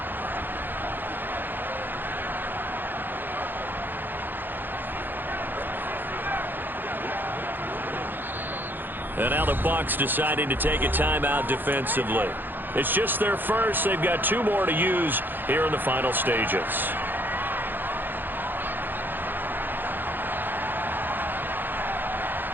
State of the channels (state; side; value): late; left; 0.092 ms